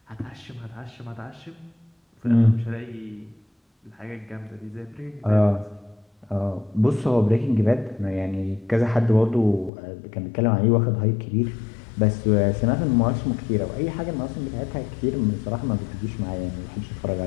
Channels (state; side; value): drops out; right; at 9.7 s